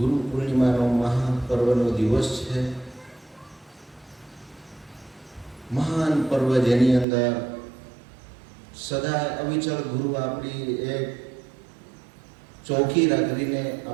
પૂર્ણિમાનો મહાપર્વનો દિવસ છે। મહાન પર્વ જેની અંદર સદા અવિચળ ગુરુ આપણી એક ચોકી રાખીને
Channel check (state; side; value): drops out; left; at 7.1 s